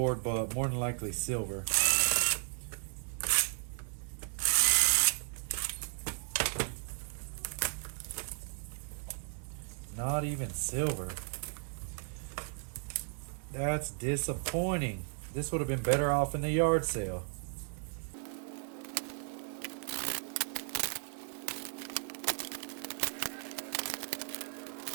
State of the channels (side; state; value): left; silent; 54 dB below the other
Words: but more than likely silver. Not even silver. That's disappointing. This would have been better off in the yard sale.